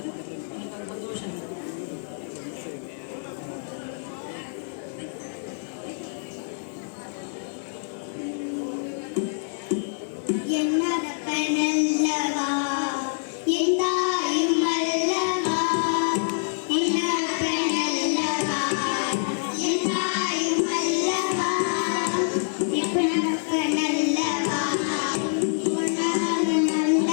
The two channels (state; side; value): silent; right; digital silence